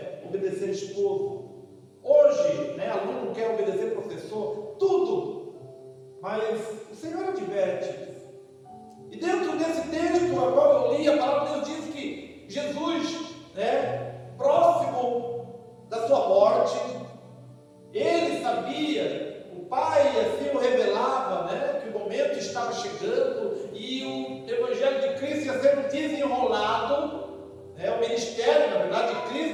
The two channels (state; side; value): identical; both; correlation 1.00